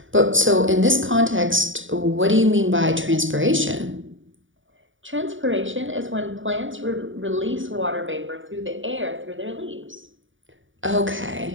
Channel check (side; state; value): left; late; 0.57 ms